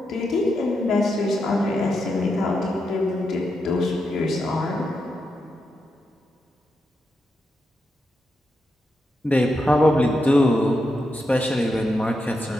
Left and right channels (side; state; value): both; normal; correlation 0.85